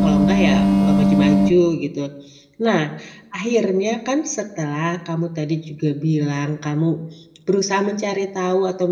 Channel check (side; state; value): both; identical; correlation 1.00